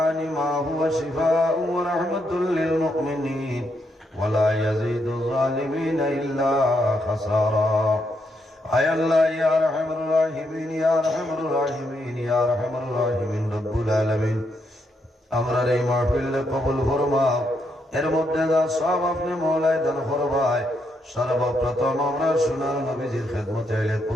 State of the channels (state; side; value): normal; both; correlation 0.78